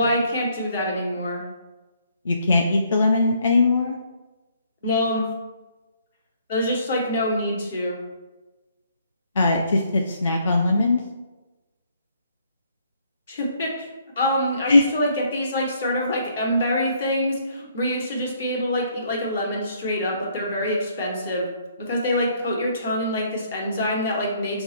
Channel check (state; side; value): inverted; both; correlation -0.67